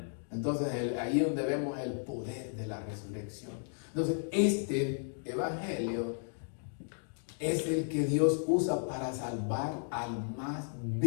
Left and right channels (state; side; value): silent; right; digital silence